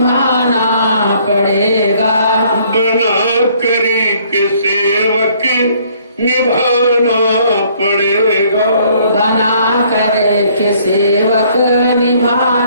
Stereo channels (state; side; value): inverted; both; correlation -0.62